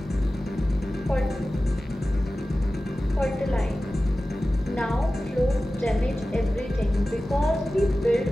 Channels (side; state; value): both; normal; correlation 0.95